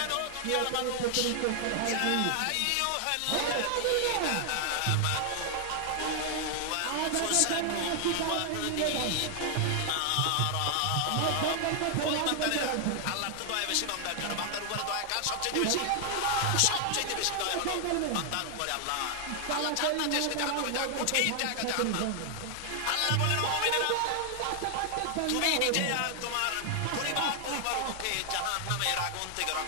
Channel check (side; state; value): both; different; correlation 0.00